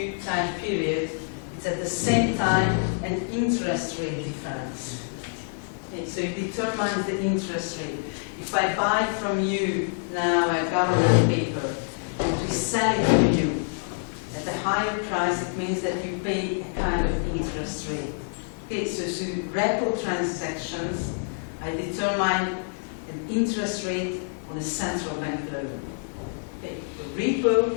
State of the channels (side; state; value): right; silent; 60 dB below the other